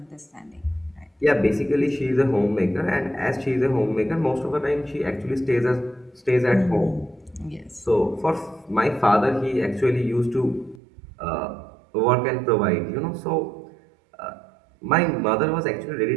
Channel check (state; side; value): drops out; left; at 10.8 s